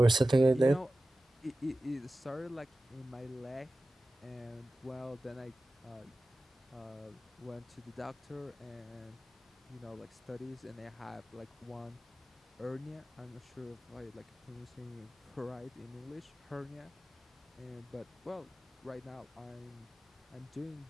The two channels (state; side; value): normal; both; correlation 0.95